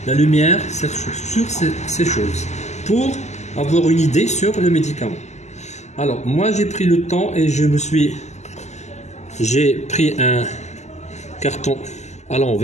la lumière sur ces choses pour avoir une idée sur le médicament. Alors, moi j'ai pris le temps et j'ai pris un carton à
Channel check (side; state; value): right; late; 0.33 ms